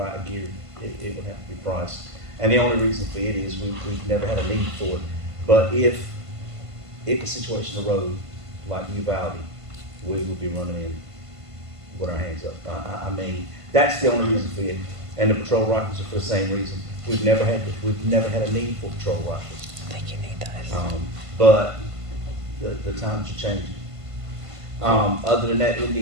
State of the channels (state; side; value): late; left; 1.5 ms